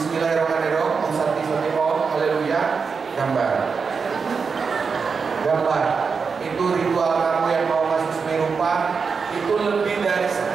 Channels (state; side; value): quieter; left; 5.4 dB